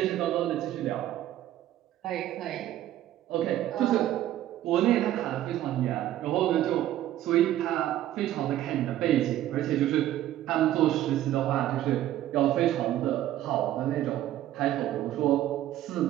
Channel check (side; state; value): left; quieter; 13.2 dB